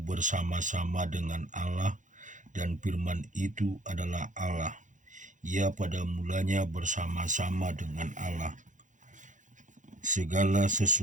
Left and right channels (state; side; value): late; left; 0.36 ms